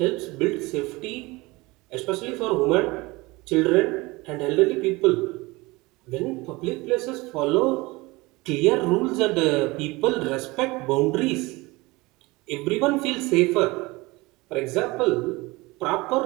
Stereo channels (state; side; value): quieter; left; 22.7 dB